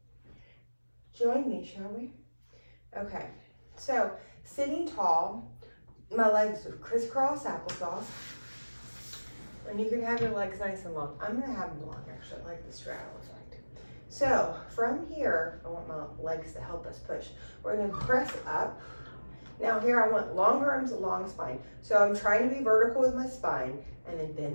join me, shall we? Okay, so sitting tall, my legs are crisscross applesauce. And you can have your legs nice and long. I'm gonna have them long actually, like the straddle effect. So from here, I want my legs to help us push. We're gonna press up. Now here I want long arms, long spine. So I'm trying to be vertical with my spine and then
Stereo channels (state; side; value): inverted; both; correlation -1.00